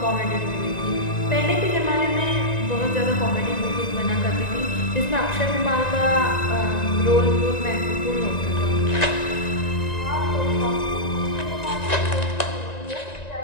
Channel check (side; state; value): right; late; 1.9 ms